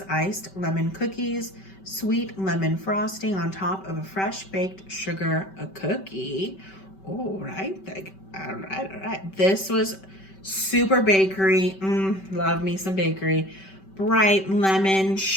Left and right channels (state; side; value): late; right; 5.2 ms